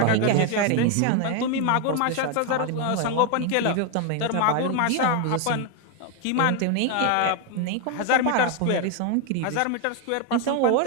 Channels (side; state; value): both; different; correlation 0.01